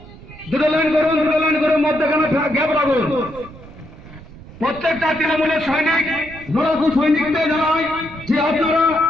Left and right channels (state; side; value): noise; right; rumble, 18 dB below the sound